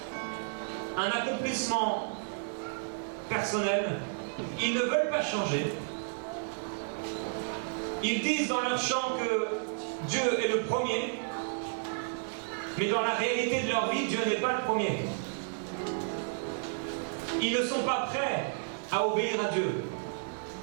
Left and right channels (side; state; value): left; silent; digital silence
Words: un accomplissement personnel. Ils ne veulent pas changer. Ils disent dans leur chant que Dieu est le premier, mais dans la réalité de leur vie, Dieu n'est pas le premier. Ils ne sont pas prêts à obéir à Dieu.